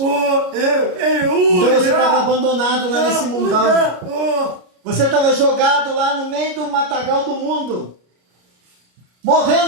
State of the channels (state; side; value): late; left; 33 ms